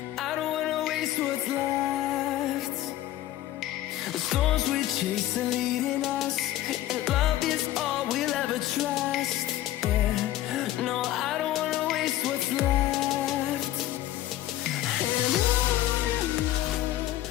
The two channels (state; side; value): quieter; right; 14.1 dB